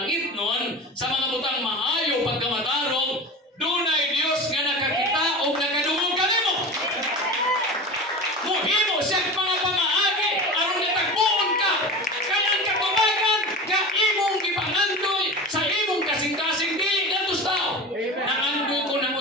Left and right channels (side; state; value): both; normal; correlation 0.30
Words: nun, sa mga butang maayo pagkamatarong, doon ay Diyos nga nakakita o nakadungog ka nimo. Muhimo siya mga pamaagi, aron natagpuon ka. Kaya ang katubagan, ka imong ipangandoy sa imong kasing-kasing dili natos tao. Nangandoy ko